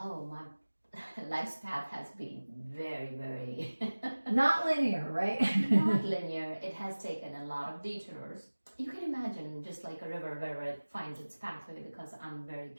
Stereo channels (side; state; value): both; inverted; correlation -1.00